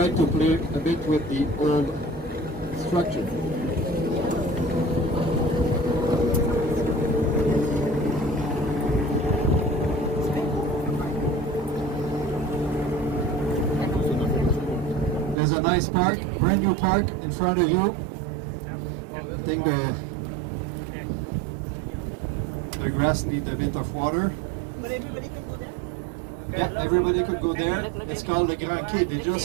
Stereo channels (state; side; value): drops out; left; at 15.4 s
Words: to play a bit with the old structure. There's a nice park, brand new park in front of you. I think the grass needs a bit of water. Yeah, everybody could go there. It's called the Grand Quai. They're